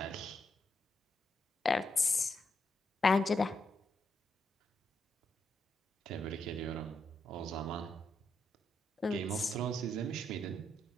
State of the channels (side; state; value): both; normal; correlation 0.81